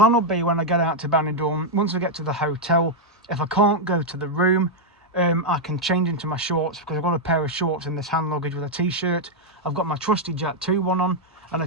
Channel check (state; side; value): normal; both; correlation -0.02